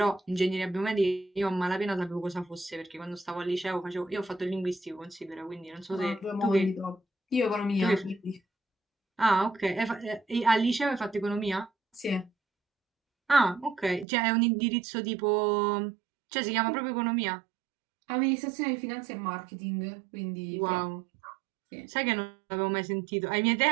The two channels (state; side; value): drops out; left; at 14.1 s